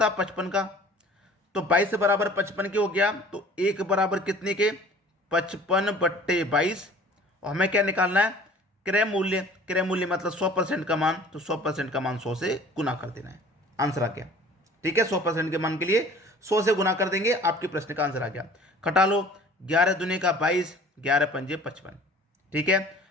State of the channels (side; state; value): both; normal; correlation 0.48